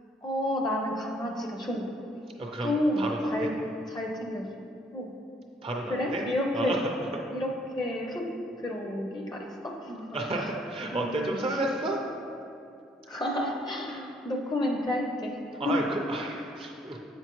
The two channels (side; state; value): both; normal; correlation 0.64